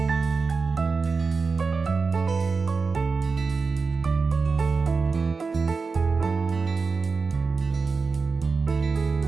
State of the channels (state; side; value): quieter; left; 4.7 dB